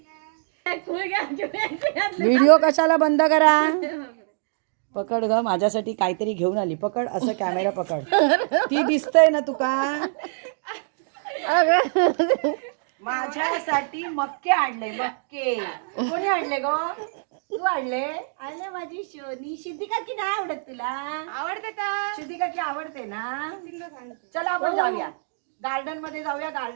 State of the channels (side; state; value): left; silent; digital silence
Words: व्हिडिओ कशाला बंद करा. पकड ग, माझ्यासाठी काहीतरी घेऊन आली. पकड, असं कॅमेरा पकड. ती दिसतंय ना तुका? माझ्यासाठी मक्के आणले. मक्के कोणी आणले ग? तू आणले? आणले माझी शोनी. सिद्धी काकी नाही आवडत तुला? आवडते का? सिद्धी काकी आवडते ना? चला आपण जाऊया गार्डन मध्ये, जाऊया